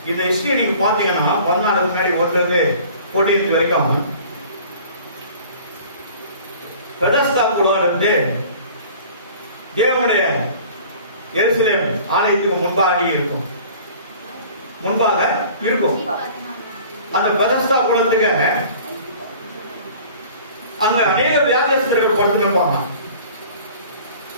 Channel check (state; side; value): inverted; both; correlation -0.47